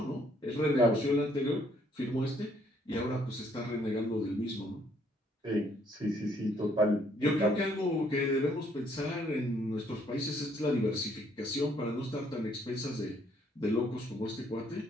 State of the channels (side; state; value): both; normal; correlation 0.67